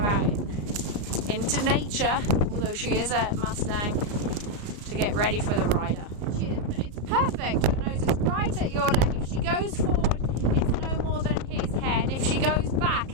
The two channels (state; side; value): late; left; 34 ms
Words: into nature, although she is a Mustang, to get ready for the rider. It's perfect. Her nose is right at your leg. If she goes forward, it's no more than his head. If she goes back,